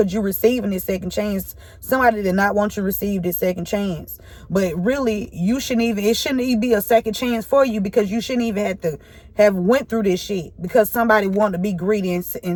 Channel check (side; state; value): both; identical; correlation 1.00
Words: you receiving this second chance. Somebody did not want you to receive this second chance. But really, it shouldn't even be a second chance for you, because you shouldn't even have to have went through this shit because somebody wanted to be greedy